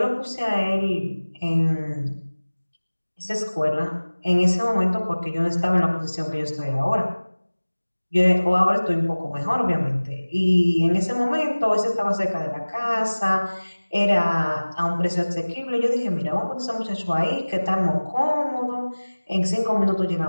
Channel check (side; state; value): both; inverted; correlation -1.00